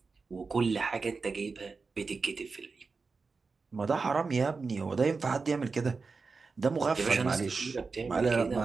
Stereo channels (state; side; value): quieter; left; 4.5 dB